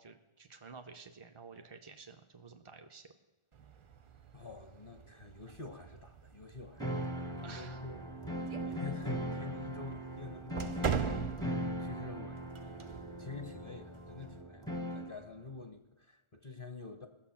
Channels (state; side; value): late; right; 1.4 ms